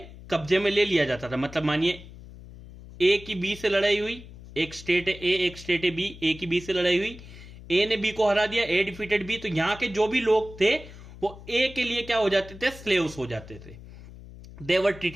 कब्जे में ले लिया जाता था। मतलब मानिए ए की बी से लड़ाई हुई, एक स्टेट है ए, एक स्टेट है बी, ए की बी से लड़ाई हुई, ए ने बी को हरा दिया, ए डिफीटेड बी। तो यहां के जो भी लोग थे वो ए के लिए क्या हो जाते थे, स्लेव्स हो जाते थे। They were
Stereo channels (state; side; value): noise; left; hum, 17 dB below the sound